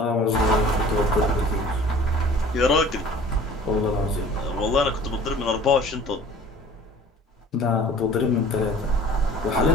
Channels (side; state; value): both; normal; correlation 0.47